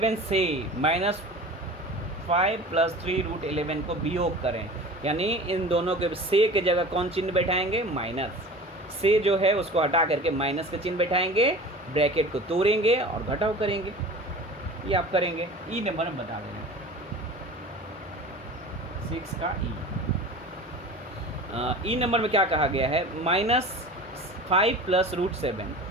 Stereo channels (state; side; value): normal; both; correlation 0.38